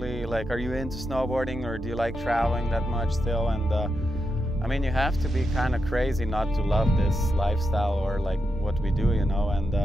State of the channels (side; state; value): both; normal; correlation 0.86